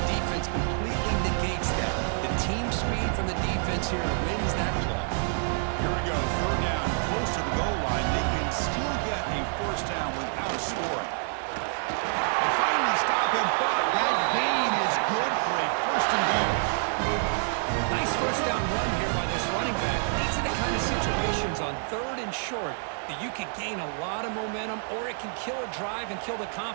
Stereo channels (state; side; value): silent; left; 60 dB below the other